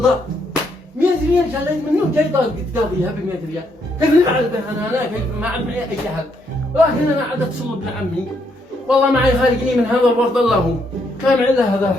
100 ريال شليت منه جاي تقاضيها ب 100 ريال، كيف نفعل به انا كيف ما عاد معي اي حل، ولكن انا عاد اتصل بابن عمي، والله معي خارجني من هذا الورد الله هو، ما معي الا هذا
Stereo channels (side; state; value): both; normal; correlation 0.74